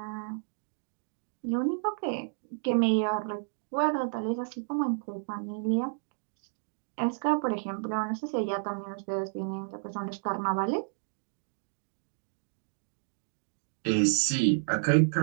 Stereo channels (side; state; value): left; silent; digital silence